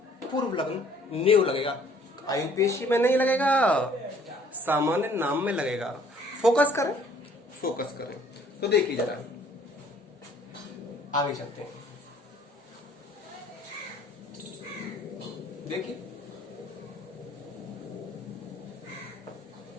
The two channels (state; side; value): normal; both; correlation 0.58